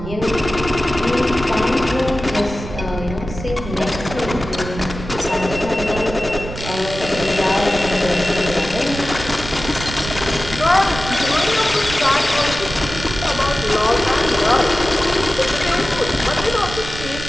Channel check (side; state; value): right; noise; rumble, 10 dB below the sound